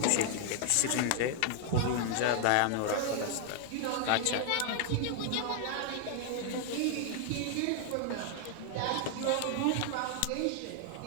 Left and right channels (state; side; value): different; both; correlation 0.00